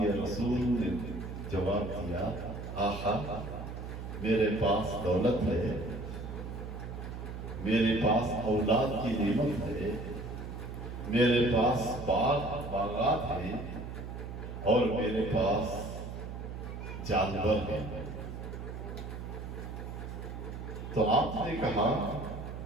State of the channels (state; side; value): noise; right; hum, 8 dB below the sound